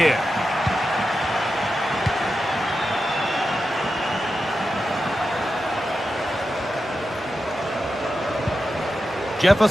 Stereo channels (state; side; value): normal; both; correlation 0.90